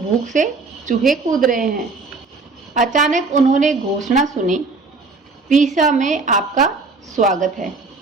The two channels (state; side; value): quieter; left; 3.9 dB